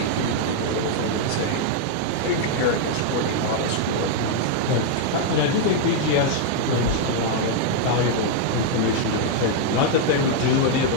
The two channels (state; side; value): different; both; correlation 0.00